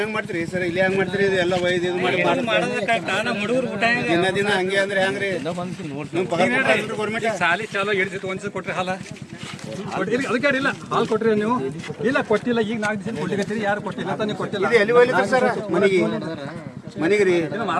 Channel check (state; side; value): identical; both; correlation 1.00